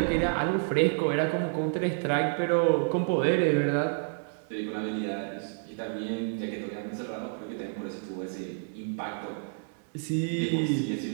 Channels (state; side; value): silent; left; digital silence